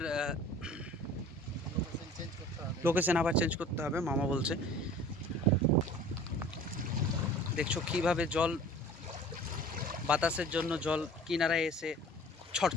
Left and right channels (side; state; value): both; normal; correlation 0.45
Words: লোকেশন আবার চেঞ্জ করতে হবে মামা বলছে। দেখছো কিভাবে জল, বাতাসের জন্য জল কিনারায় এসে ছড়